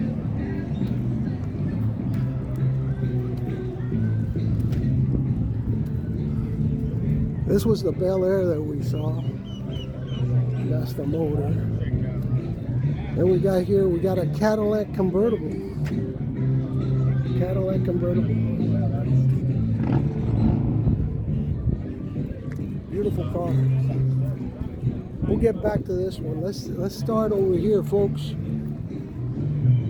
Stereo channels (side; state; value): both; identical; correlation 1.00